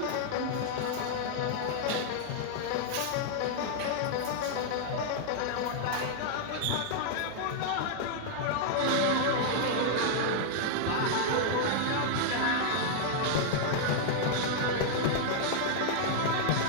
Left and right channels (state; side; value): different; both; correlation -0.01